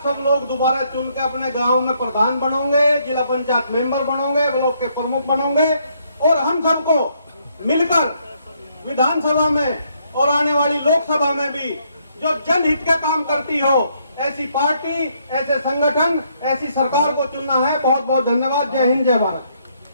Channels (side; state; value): both; inverted; correlation -0.71